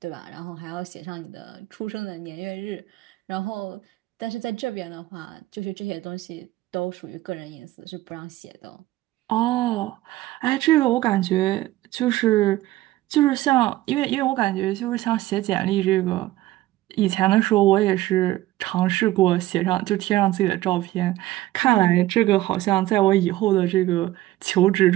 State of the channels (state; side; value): quieter; left; 16.3 dB